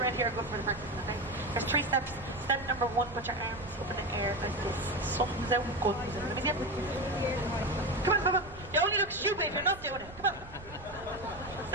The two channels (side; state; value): right; noise; rumble, 17 dB below the sound